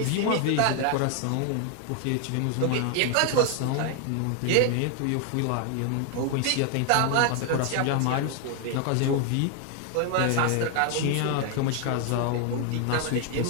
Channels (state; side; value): different; both; correlation 0.00